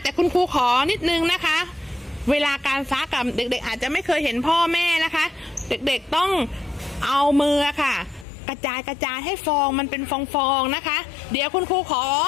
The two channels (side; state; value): right; drops out; at 8.2 s